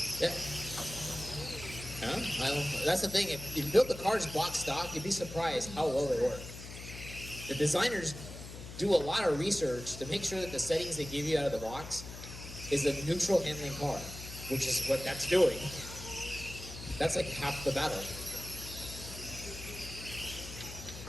Yeah. Huh? That's the thing. If you build the cars block stock, you'd be surprised how well they work. The designers do a lot of research to make sure that the settings they give you out of the box is a neutral handling car, which is what that's doing. That's like half the battle.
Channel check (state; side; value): noise; left; hum, 12 dB below the sound